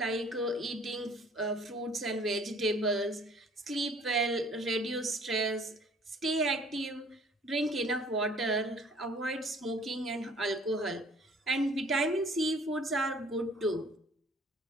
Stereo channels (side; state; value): both; normal; correlation 0.54